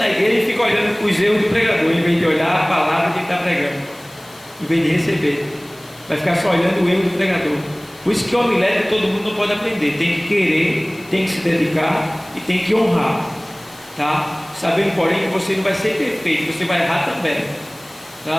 igreja e fica olhando os erros do pregador, em vez de olhar a palavra que ele está pregando, em vez de receber, vai ficar só olhando o erro do pregador. Por isso que homilética todo mundo não pode aprender, tem que querer, tem que se dedicar e tem que honrar, tá? Sabendo, porém, que você não vai ser perfeito, você vai errar também,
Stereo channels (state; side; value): noise; left; hiss, 24 dB below the sound